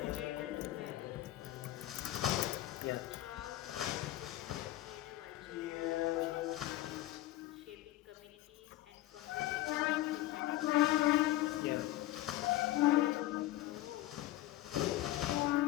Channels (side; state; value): right; quieter; 15.5 dB